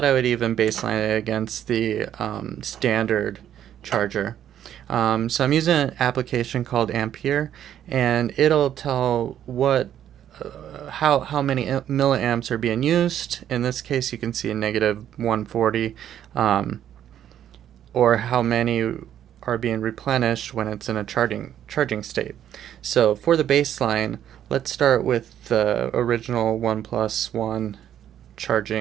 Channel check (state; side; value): quieter; left; 10.5 dB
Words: I would even baseline it against the standard charger. So I'm using an application called Ampere, and it'll tell what how many milliamps are being used. In this case, you can see a negative 140, or how many are being replenished when it's in a charging state. So for the baseline, let's start with the original OnePlus One